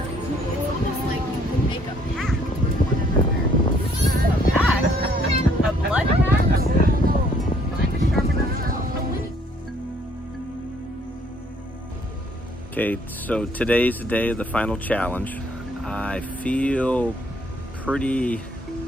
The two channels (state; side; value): normal; both; correlation 0.63